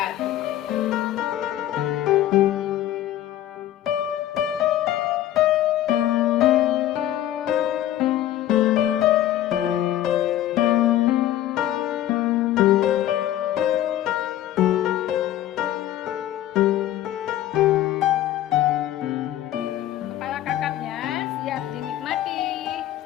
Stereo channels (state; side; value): quieter; right; 13.0 dB